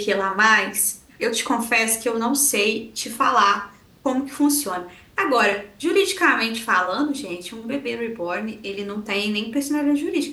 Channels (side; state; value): both; identical; correlation 1.00